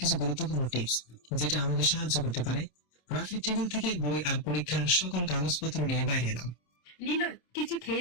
কিছু গুরুত্বপূর্ণ টিপস যেটা আমাদের সাহায্য করতে পারে। রাফির টেবিল থেকে বই আর পরীক্ষার সকল কাগজপত্র নিয়ে বাইরে এলাম। নীল, কিছু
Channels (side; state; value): right; late; 27 ms